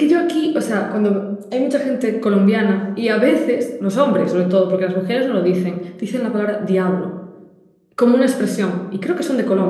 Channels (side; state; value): both; identical; correlation 1.00